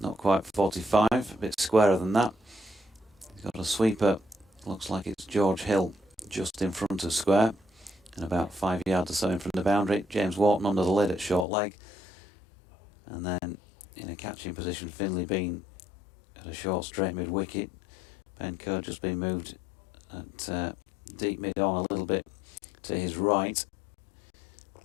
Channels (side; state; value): right; drops out; at 11.5 s